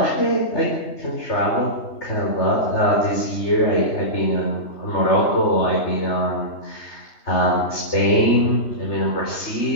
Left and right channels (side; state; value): right; late; 3.2 ms